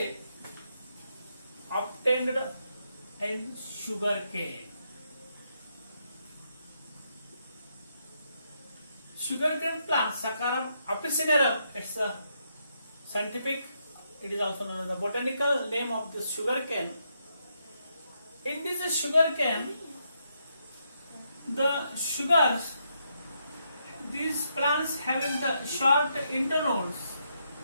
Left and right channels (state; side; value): inverted; both; correlation -0.79